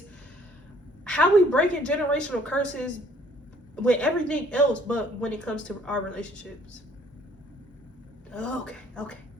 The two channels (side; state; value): both; normal; correlation 0.60